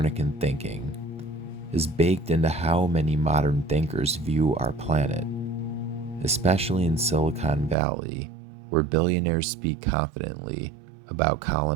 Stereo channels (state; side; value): drops out; left; at 7.8 s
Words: thinking, is baked into how many modern thinkers view our planet, especially in Silicon Valley, where billionaires speak confidently about